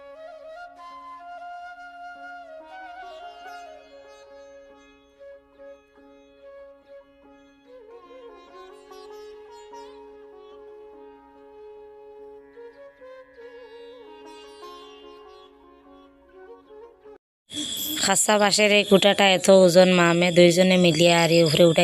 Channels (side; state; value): both; identical; correlation 1.00